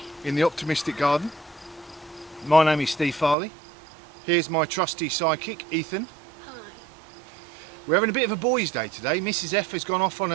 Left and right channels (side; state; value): left; drops out; at 3.4 s